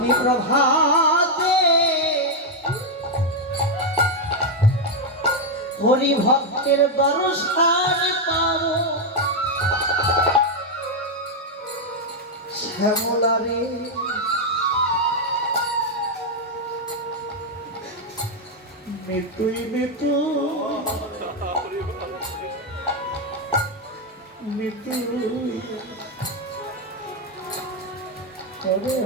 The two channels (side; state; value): both; normal; correlation 0.01